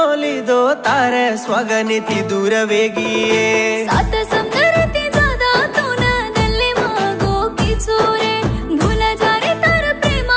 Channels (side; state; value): both; identical; correlation 1.00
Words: लीधो तारे स्वागनी थी दूर वेगी सात समंदर ती ज्यादा तू न दल्ले मागो की चोरे भूला जा रे तार